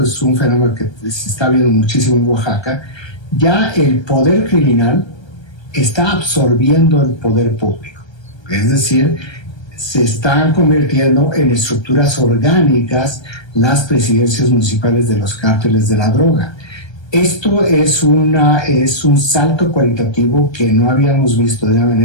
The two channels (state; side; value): late; right; 1.3 ms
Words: es un fenómeno que se está viendo muchísimo en Oaxaca, ya el poder criminal está absorbiendo el poder público. Es decir, se están convirtiendo en estructuras orgánicas las presidencias municipales de los cárteles de la droga. Esto es un salto cualitativo que no habíamos visto de una